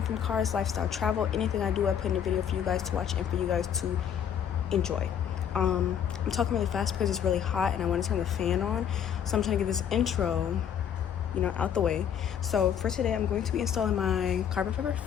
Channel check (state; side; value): quieter; right; 8.7 dB